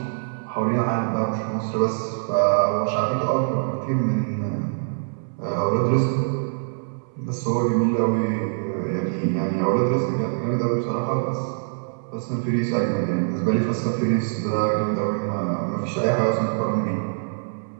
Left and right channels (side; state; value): left; silent; 63 dB below the other